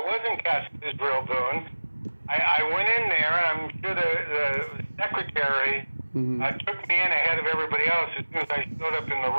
wasn't cast as Israel Boone. I went in there, and I'm sure the secretary took me in ahead of everybody else as soon as I showed up in the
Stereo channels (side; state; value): both; inverted; correlation -1.00